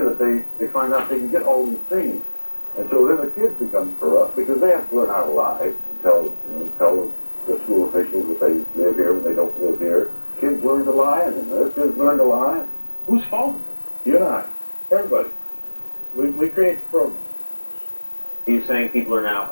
they find out they can get all these things. And so then the kids become corrupt because they have to learn how to lie and tell the school officials that they live here when they don't live here. Kids learn to lie, and then their kids learn to lie. Whose fault is it? You and I. Everybody. We create the program. Are you saying people are now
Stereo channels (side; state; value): both; inverted; correlation -1.00